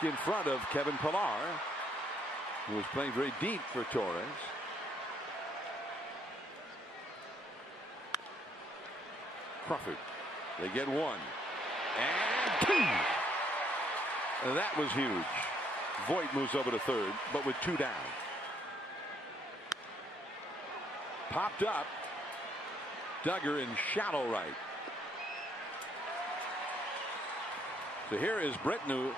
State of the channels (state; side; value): normal; both; correlation 0.69